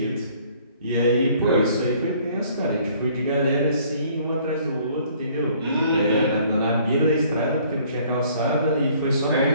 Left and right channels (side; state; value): both; inverted; correlation -0.59